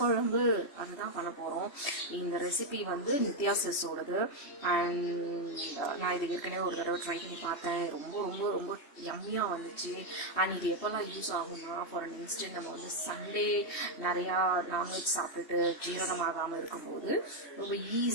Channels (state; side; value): late; right; 3.2 ms